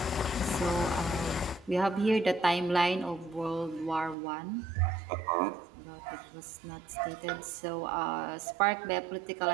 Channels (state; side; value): drops out; left; at 4.2 s